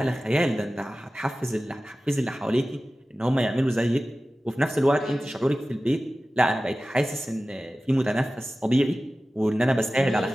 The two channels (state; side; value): normal; both; correlation 0.96